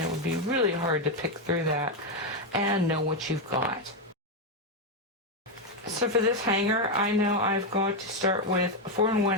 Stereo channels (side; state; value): both; normal; correlation 0.05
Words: would be really hard to pick through that and know what you've got. So for this hanger, I know I've got to start with 4